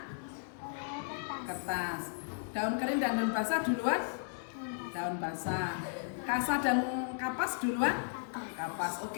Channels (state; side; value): silent; right; digital silence